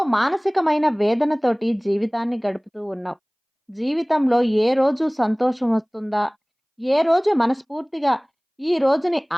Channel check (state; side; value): identical; both; correlation 1.00